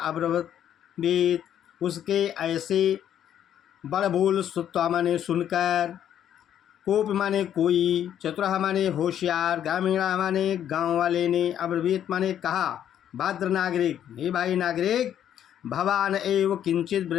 उसके ऐसे बड़बोल, सुत्ता माने सुनकर, कोप माने कोई, चतुरा माने होशियार, ग्रामीणा माने गांव वाले ने, अब्रवीत माने कहा, भद्र नागरिक, हे भाई नागरिक, भवान एव किंचित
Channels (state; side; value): quieter; right; 10.2 dB